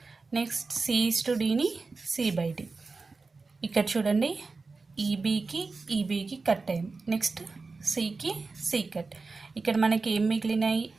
నెక్స్ట్ C:Dని C/D. ఇక్కడ చూడండి ఈబీకి కట్ అయింది, నెక్స్ట్ సికి సి కట్. ఇక్కడ మనకి ఏం మిగిలినాయి,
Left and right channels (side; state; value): left; quieter; 4.1 dB